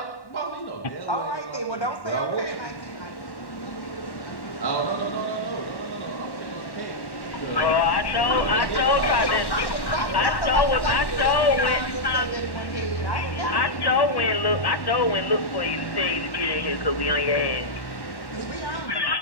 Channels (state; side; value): late; right; 1.1 ms